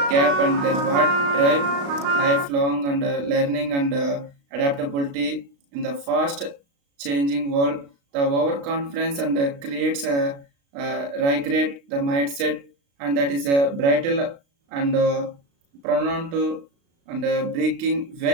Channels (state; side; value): late; left; 36 ms